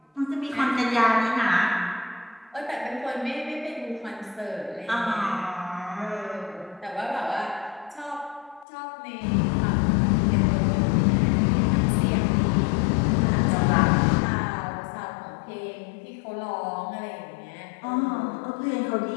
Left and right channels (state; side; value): drops out; right; at 8.7 s